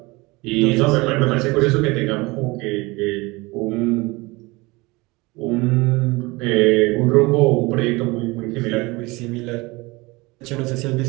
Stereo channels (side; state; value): left; quieter; 23.5 dB